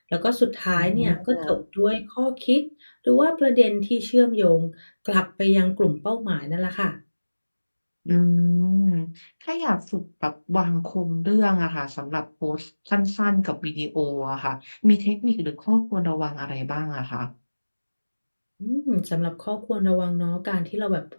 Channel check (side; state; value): both; inverted; correlation -1.00